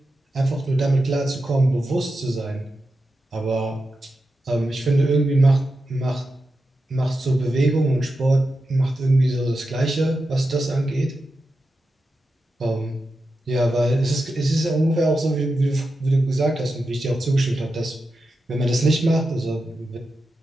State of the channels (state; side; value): normal; both; correlation 0.89